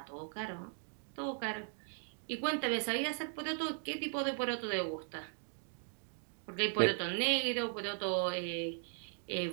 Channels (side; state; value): left; silent; 52 dB below the other